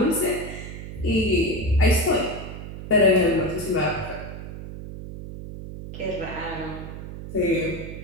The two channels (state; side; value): noise; right; hum, 10 dB below the sound